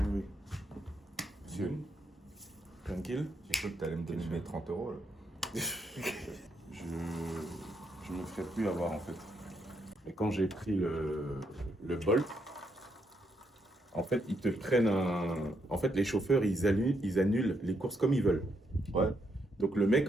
Monsieur. Tranquille. J'ai cru que tu allais me donner mes 30 €. Je me ferai plus avoir en fait. Et quand j'ai pris le Bolt, en fait, ils te prennent En fait, les chauffeurs, ils annulent les courses comme ils veulent. Ouais. Donc le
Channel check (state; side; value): normal; both; correlation 0.77